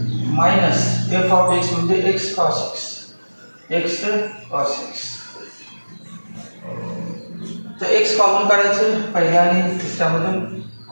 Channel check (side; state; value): both; inverted; correlation -1.00